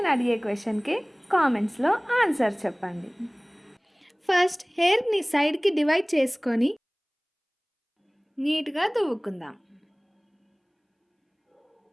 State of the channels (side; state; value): both; identical; correlation 1.00